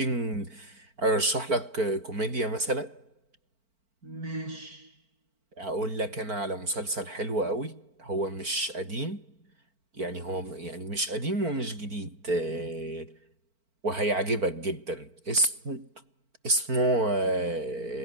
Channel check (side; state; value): left; late; 4.5 ms